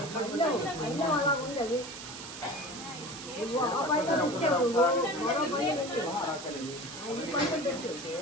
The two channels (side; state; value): right; noise; hiss, 11 dB below the sound